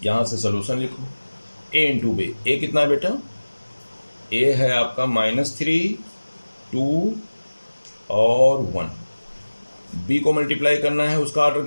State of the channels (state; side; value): inverted; both; correlation -1.00